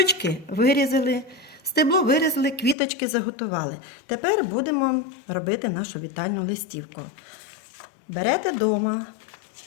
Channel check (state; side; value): drops out; right; at 2.8 s